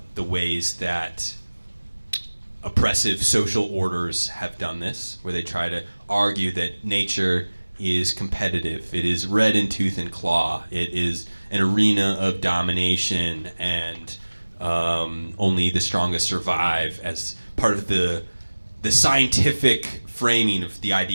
ways that oppressive social orders have done this, where they try to argue that nature is competitive. It is red in tooth and claw. It is an arena of domination, and only the strongest survive, as part of the scientific framing of the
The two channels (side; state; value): both; inverted; correlation -1.00